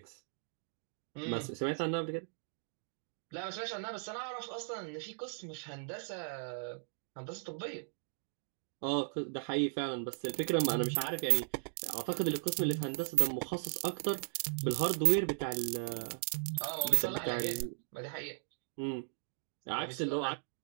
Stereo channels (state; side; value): silent; left; digital silence